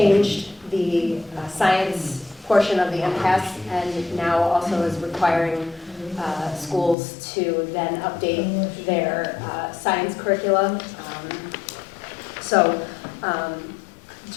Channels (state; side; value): drops out; right; at 7.0 s